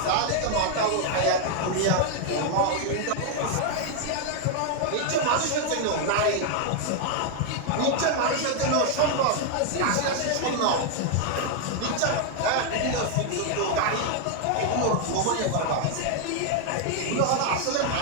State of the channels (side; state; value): both; different; correlation 0.00